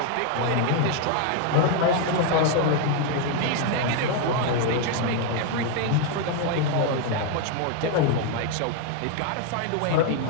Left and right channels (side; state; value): both; different; correlation 0.00